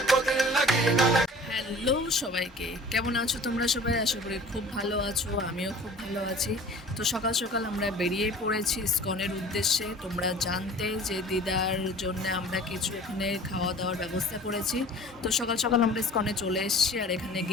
হ্যালো সবাইকে, কেমন আছো তোমরা সবাই? আশা করি খুব ভালো আছো, আমিও খুব ভালো আছি। তো সকাল সকাল আমরা বেরিয়ে পড়েছি ইসকনের উদ্দেশ্যে। তোমরা জানতে যে দিদার জন্য আমরা কিছু এখানে খাওয়া দাওয়ার ব্যবস্থা করেছি। তো সকাল সকাল আমরা ইসকনে চলে এসেছি, আর এখানে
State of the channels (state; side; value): normal; both; correlation 0.45